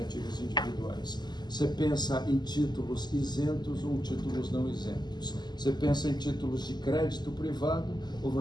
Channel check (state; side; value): late; right; 0.21 ms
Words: individuais? Você pensa em títulos isentos ou títulos não isentos? Você pensa em títulos de crédito privado ou